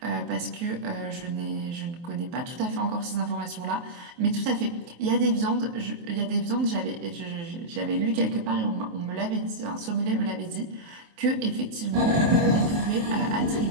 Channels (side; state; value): left; late; 23 ms